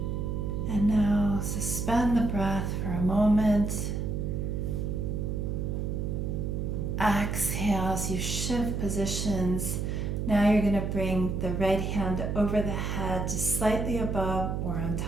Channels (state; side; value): noise; right; hum, 1 dB below the sound